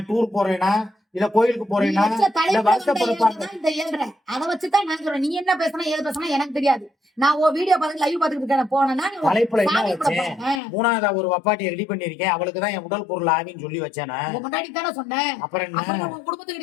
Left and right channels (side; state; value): right; drops out; at 10.6 s